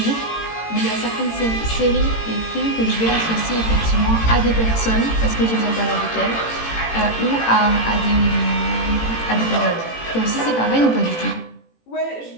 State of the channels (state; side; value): late; right; 18 ms